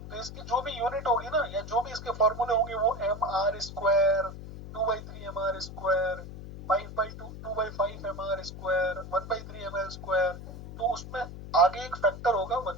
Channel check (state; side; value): noise; left; hum, 11 dB below the sound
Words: तो इसकी जो भी यूनिट होगी ना, या जो भी इसके फॉर्मूले होंगे वो M R square, 2/3 M R square, 5/2 M R square, 1/3 M L square. तो उसमें आगे एक फैक्टर होगा